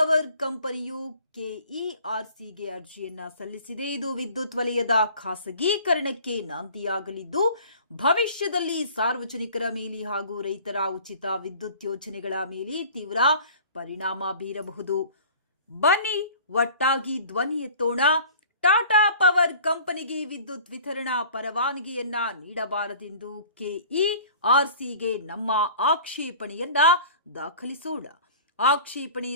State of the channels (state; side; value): inverted; both; correlation -0.46